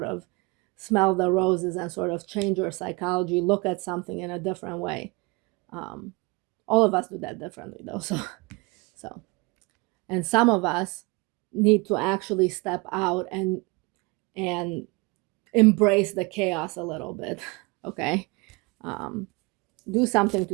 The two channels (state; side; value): quieter; left; 27.0 dB